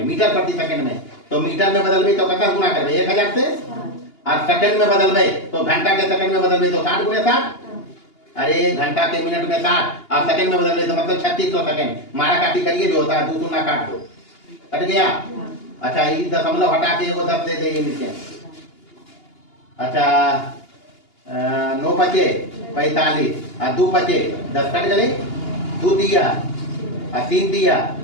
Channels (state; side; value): late; right; 2.8 ms